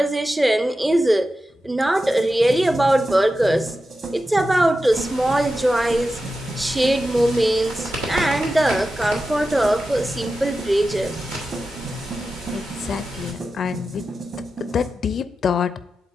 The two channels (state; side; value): normal; both; correlation 0.92